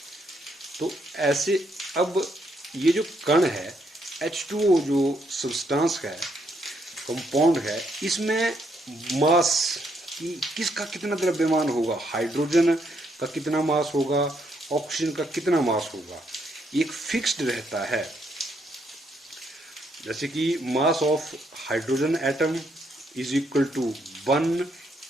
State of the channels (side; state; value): both; normal; correlation 0.74